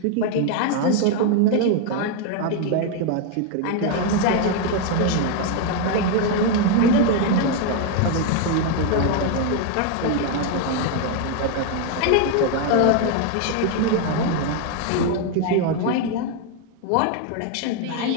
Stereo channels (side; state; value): both; different; correlation 0.01